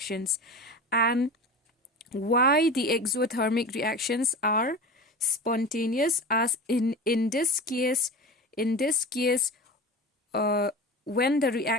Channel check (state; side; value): normal; both; correlation 0.31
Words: and why the exothermic reactions are spontaneous, as in this case when the